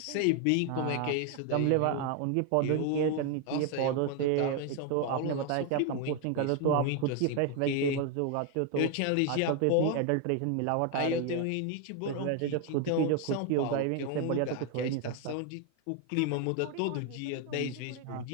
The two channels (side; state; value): both; different; correlation 0.01